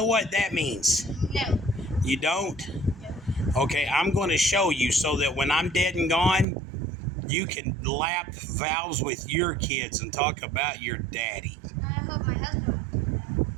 what that means? No. You don't? No. Okay, I'm going to show you so that when I'm dead and gone, you can lap valves with your kids and talk about your daddy. I hope my husband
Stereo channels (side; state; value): left; drops out; at 6.5 s